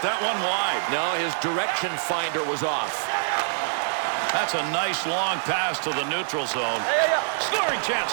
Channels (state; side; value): silent; left; 62 dB below the other